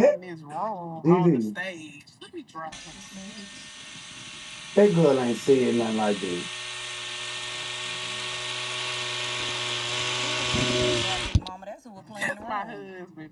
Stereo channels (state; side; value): identical; both; correlation 1.00